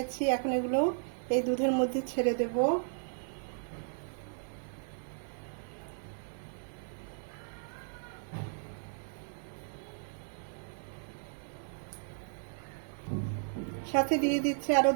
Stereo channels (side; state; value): left; silent; 54 dB below the other